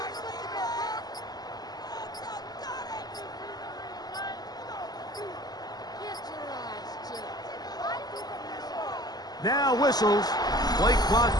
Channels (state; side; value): late; right; 0.19 ms